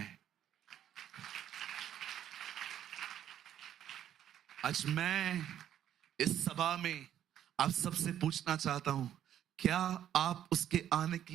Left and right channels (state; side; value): quieter; left; 10.8 dB